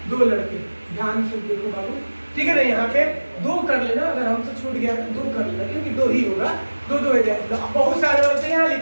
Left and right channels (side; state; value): both; inverted; correlation -1.00